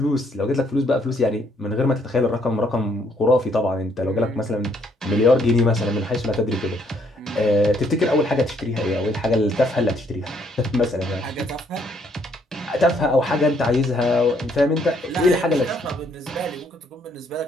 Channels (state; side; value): normal; both; correlation 0.69